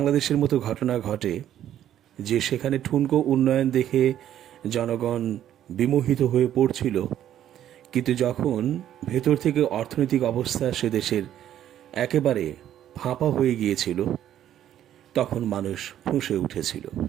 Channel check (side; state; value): left; quieter; 11.2 dB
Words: মতো ঘটনা ঘটে, যে সেখানে ঠুনকো উন্নয়ন দেখে জনগণ বিমোহিত হয়ে পড়ছিল, কিন্তু যখন ভেতর থেকে অর্থনৈতিক অবস্থা সে দেশের একেবারে ফাঁপা হয়ে গিয়েছিল, তখন মানুষ ফুঁসে উঠেছিল।